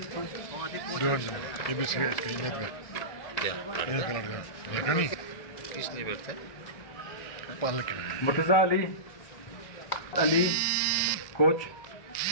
किसने बैठता मुर्तज़ा अली अली कोच,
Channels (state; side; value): late; right; 1.6 ms